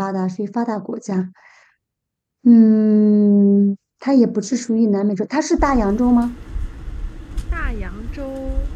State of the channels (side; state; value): both; identical; correlation 1.00